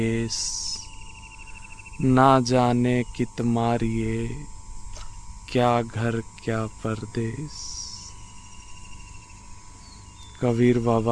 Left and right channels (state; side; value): identical; both; correlation 1.00